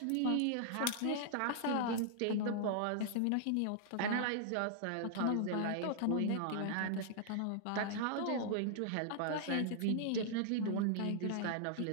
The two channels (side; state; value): both; different; correlation -0.01